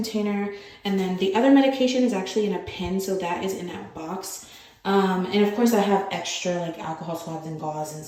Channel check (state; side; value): identical; both; correlation 1.00